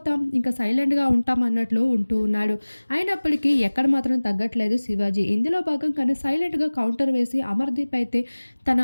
ఇంకా సైలెంట్‌గా ఉంటాం అన్నట్లు ఉంటూ ఉన్నాడు. అయినప్పటికీ ఎక్కడ మాత్రం తగ్గట్లేదు శివాజీ. ఇందులో భాగంగానే సైలెంట్‌గా కౌంటర్ వేసి అమర్‌దీప్ అయితే తన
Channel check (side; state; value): both; inverted; correlation -1.00